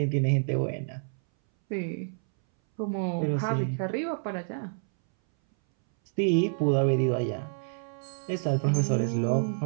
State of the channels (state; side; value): silent; left; 59 dB below the other